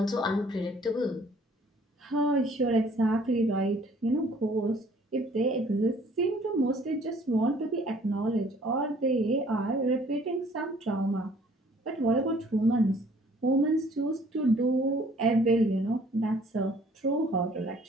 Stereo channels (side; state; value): both; normal; correlation 0.57